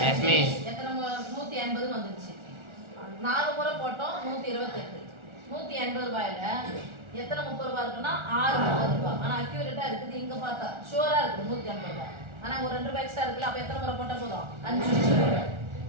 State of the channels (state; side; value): late; left; 1.4 ms